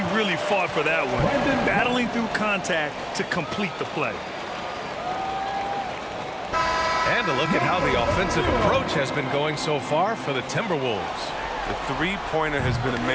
really fought for that one. Battling through contact to complete the play. And a look at how the offensive approach has been going so far for the Timberwolves. The three-pointer has been a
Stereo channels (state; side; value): identical; both; correlation 1.00